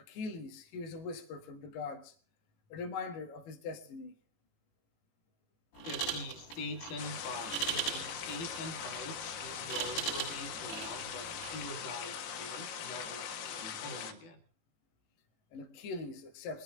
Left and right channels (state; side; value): late; right; 18 ms